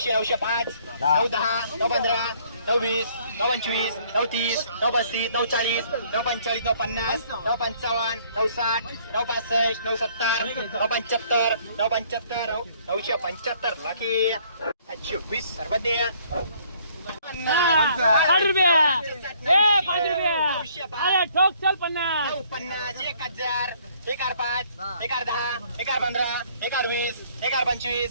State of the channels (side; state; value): both; inverted; correlation -0.62